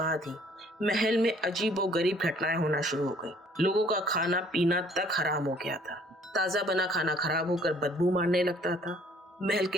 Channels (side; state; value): both; normal; correlation 0.58